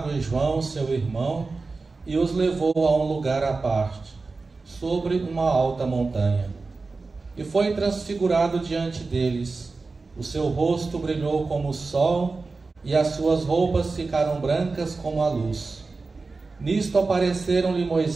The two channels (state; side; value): quieter; left; 3.9 dB